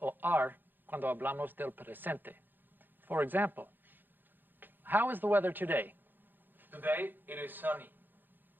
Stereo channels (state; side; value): late; left; 0.091 ms